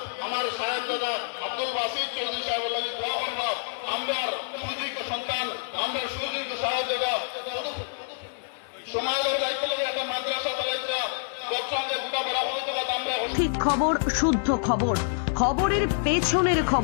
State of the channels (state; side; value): silent; right; digital silence